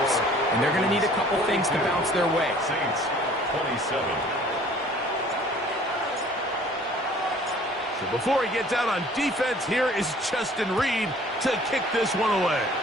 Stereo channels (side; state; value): both; normal; correlation 0.53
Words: and they're going to need a couple things to bounce their way. Saints 27. So before he gets out on defense, here is Justin Reed to kick this one away.